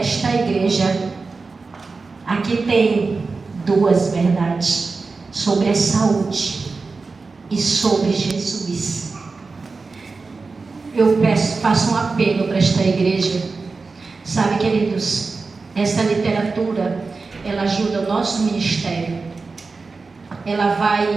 igreja. Aqui tem duas verdades sobre a saúde e sobre Jesus. Eu faço um apelo para esta igreja. Sabe, queridos, essa literatura, ela ajuda o nosso ministério. Ela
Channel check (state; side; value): quieter; left; 4.2 dB